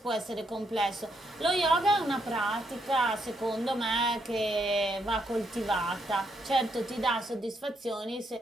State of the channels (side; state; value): both; normal; correlation 0.77